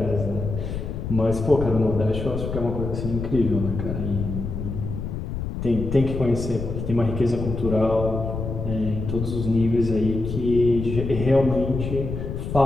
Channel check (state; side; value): noise; left; rumble, 5 dB below the sound